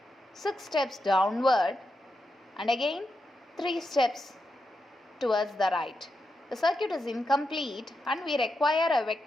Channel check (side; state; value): both; normal; correlation 0.86